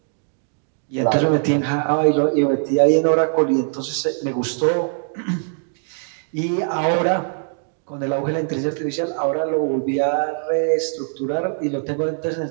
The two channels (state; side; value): silent; left; digital silence